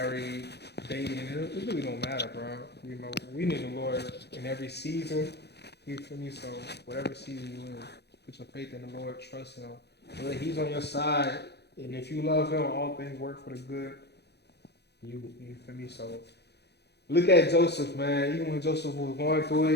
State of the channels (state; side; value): late; right; 0.48 ms